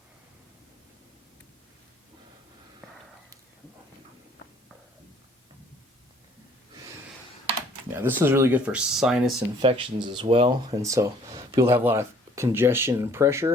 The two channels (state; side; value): normal; both; correlation 0.58